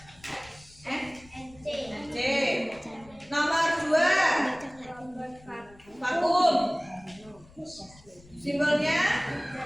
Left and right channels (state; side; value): noise; left; rumble, 25 dB below the sound